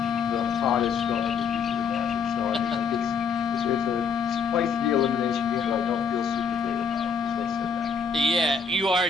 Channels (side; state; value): right; quieter; 5.7 dB